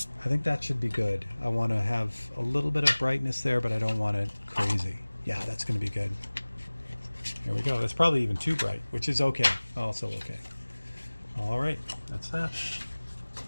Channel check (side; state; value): both; inverted; correlation -1.00